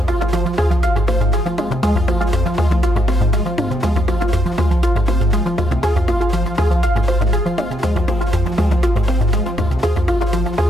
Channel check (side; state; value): both; normal; correlation 0.77